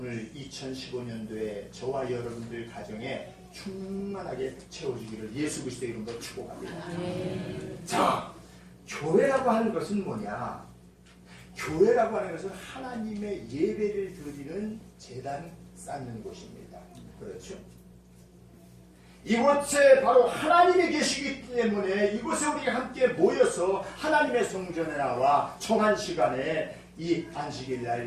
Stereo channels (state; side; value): identical; both; correlation 1.00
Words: 2015년도에 저와 여러분들 가정에 충만하게 채워주기를 예수 그리스도의 이름으로 축복합니다. 자, 교회라고 하는 것은 뭐냐? 교회라고 하는 것은 하나님의 예배를 드리는 제단 쌓는 곳입니다. 그렇죠? 이곳에 바로 하나님이 계시기 때문에 이곳에 우리가 함께 모여서 하나님의 성전에 나와 정한 시간에 이